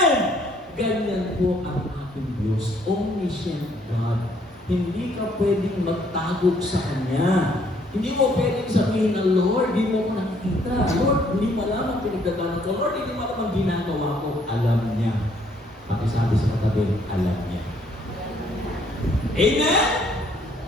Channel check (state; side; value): normal; both; correlation 0.65